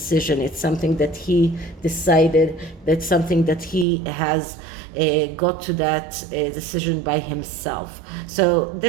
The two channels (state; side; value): drops out; left; at 3.9 s